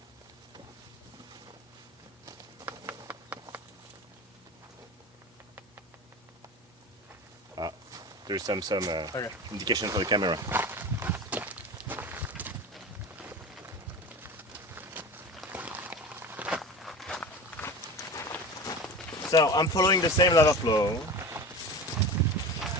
There's some Okay. indication for the camera. So I'm following the same lava flow.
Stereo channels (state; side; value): normal; both; correlation 0.31